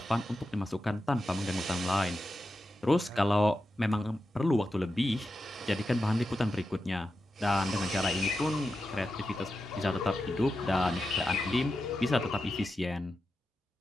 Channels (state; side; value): normal; both; correlation 0.90